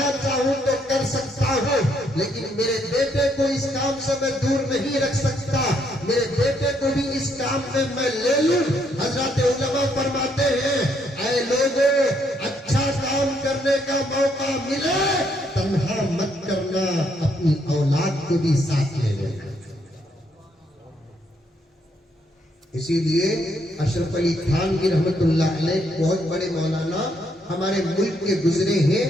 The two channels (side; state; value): both; normal; correlation 0.73